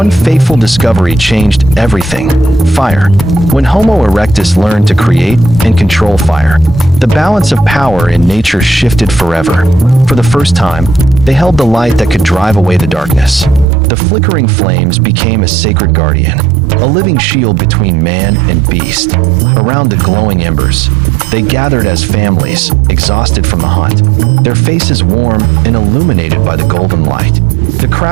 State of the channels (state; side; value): drops out; left; at 13.7 s